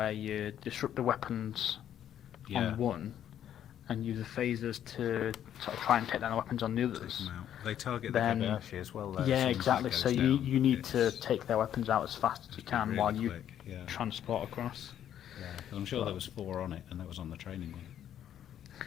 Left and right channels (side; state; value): right; quieter; 10.4 dB